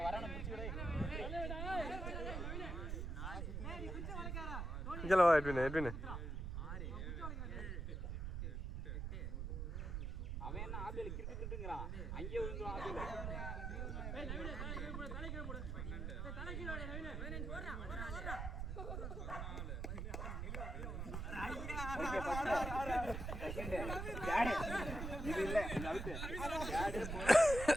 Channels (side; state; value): right; noise; rumble, 4 dB below the sound